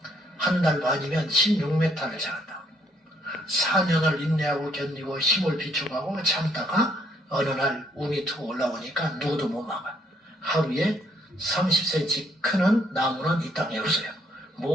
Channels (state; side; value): normal; both; correlation 0.68